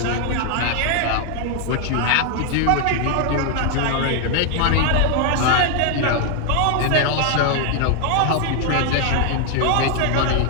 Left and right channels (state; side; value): different; both; correlation 0.00